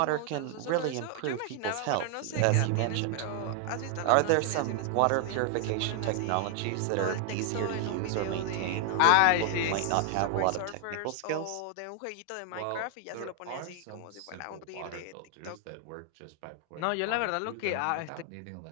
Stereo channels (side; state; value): both; different; correlation 0.00